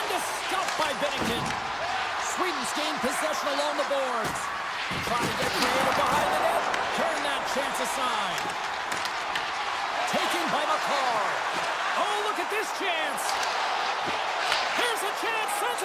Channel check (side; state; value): both; identical; correlation 1.00